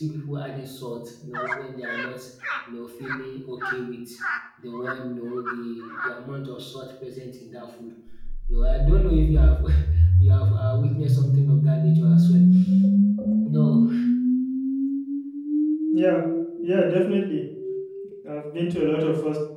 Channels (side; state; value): both; identical; correlation 1.00